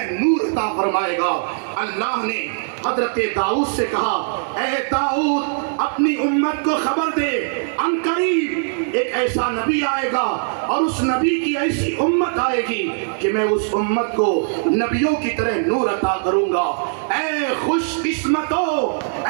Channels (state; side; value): silent; left; digital silence